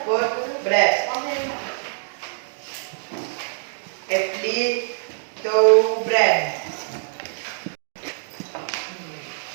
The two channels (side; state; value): left; silent; digital silence